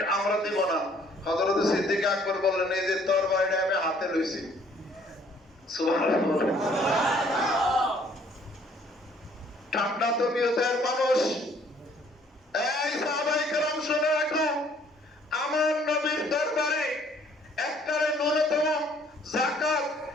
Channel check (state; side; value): normal; both; correlation 0.61